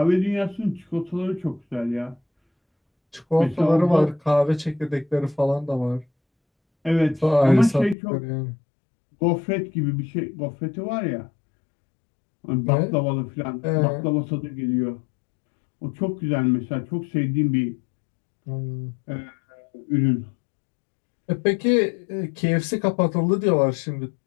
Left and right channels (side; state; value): right; drops out; at 8.0 s